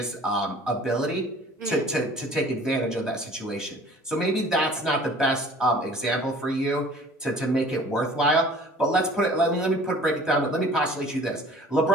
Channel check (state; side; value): normal; both; correlation 0.48